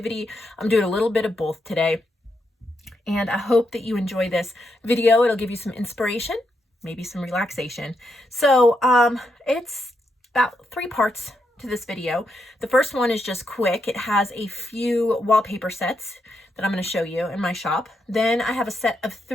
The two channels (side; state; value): both; normal; correlation 0.81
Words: I'm doing a little bit of both today. And I hope that you enjoy this video. It'll give you some inspiration, maybe some relaxation. So it's about 3 parts to this video. The first one is just quick. It has a few wallpaper sets that I'm going to show you in my shop. Then I have a set of